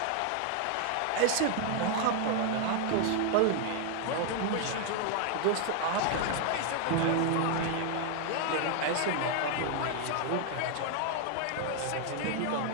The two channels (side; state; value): both; different; correlation 0.00